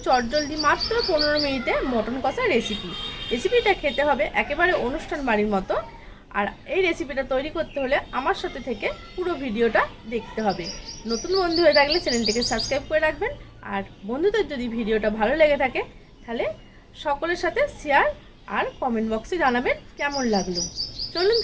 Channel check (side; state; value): both; identical; correlation 1.00